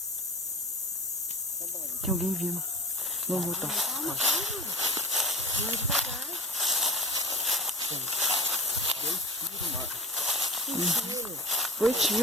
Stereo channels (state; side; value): normal; both; correlation 0.34